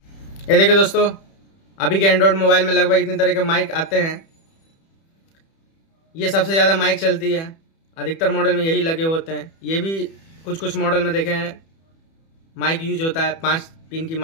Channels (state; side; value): late; right; 31 ms